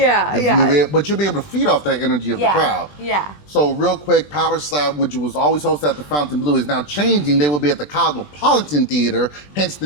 But you'll be able to feed off that energy of the crowd. Yeah. So real quick, Power Slap, which was always hosted at the Fontainebleau, is now changing. They will be at the Cosmopolitan Theater, hence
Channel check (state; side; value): late; right; 20 ms